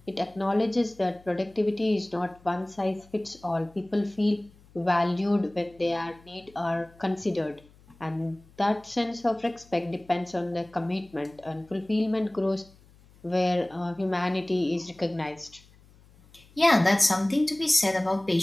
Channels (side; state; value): left; noise; hum, 27 dB below the sound